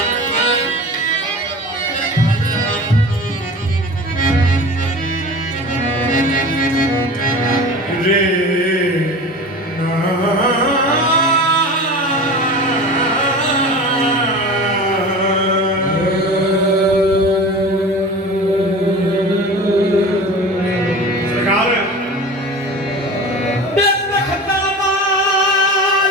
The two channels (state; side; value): normal; both; correlation 0.35